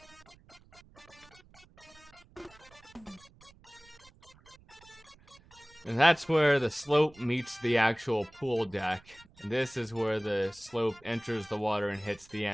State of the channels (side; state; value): right; noise; rumble, 26 dB below the sound